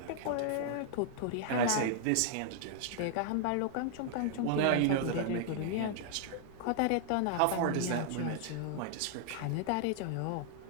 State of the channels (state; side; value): different; both; correlation 0.00